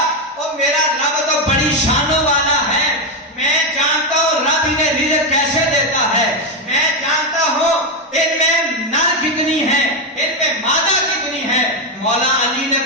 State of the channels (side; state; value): both; normal; correlation 0.07